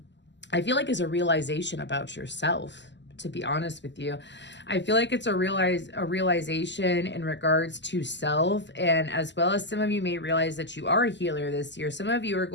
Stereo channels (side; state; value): right; late; 0.52 ms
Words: I feel like is a realization about yourself, to be honest with you. I feel like it's a realization in regards to self, and as well as some of you may realize that you are a healer this year. Some of you are